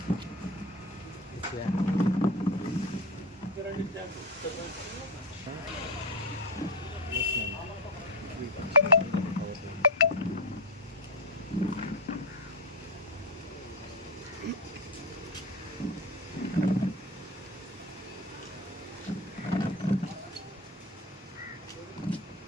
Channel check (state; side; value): normal; both; correlation 0.14